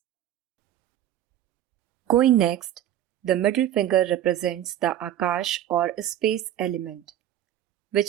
Going next, the middle finger represents the Akash or space element,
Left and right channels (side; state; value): left; quieter; 11.9 dB